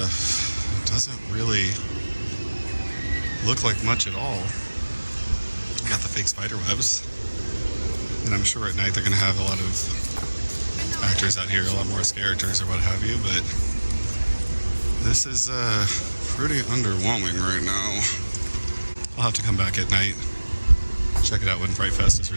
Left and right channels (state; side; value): inverted; both; correlation -1.00